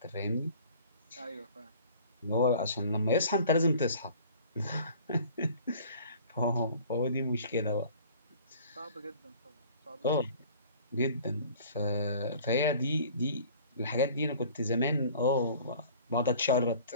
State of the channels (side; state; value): both; inverted; correlation -0.48